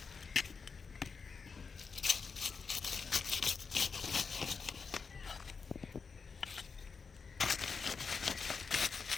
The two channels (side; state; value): right; quieter; 5.2 dB